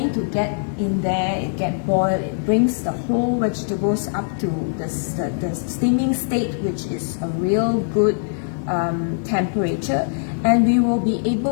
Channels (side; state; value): right; silent; digital silence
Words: to get in there, it get boiled, it brings the whole vegetables up to the steaming state, which is a real good temperature, and we will be